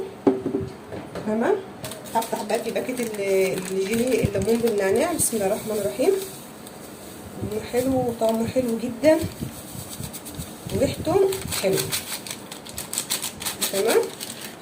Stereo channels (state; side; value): identical; both; correlation 1.00